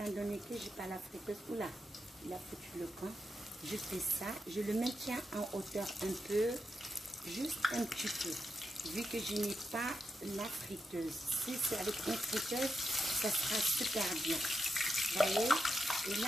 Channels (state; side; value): normal; both; correlation 0.86